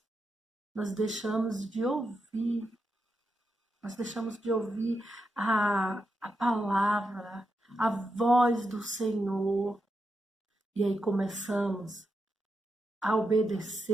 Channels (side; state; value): both; normal; correlation 0.86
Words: Nós deixamos de ouvir Nós deixamos de ouvir a palavra, a voz do Senhor. E aí começamos a